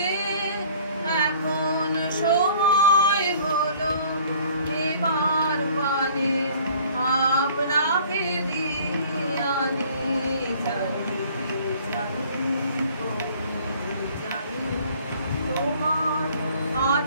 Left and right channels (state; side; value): inverted; both; correlation -0.53